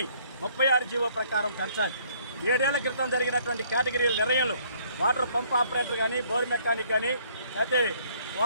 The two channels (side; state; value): both; inverted; correlation -0.62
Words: 36 జీవో ప్రకారం పెంచాలి. 7 ఏళ్ల క్రితం జరిగినటువంటి కేటగిరీల నిర్ణయంలో వాటర్ పంప్ ఆపరేటర్ కానీ, బోర్ మెకానిక్ కానీ, అయితే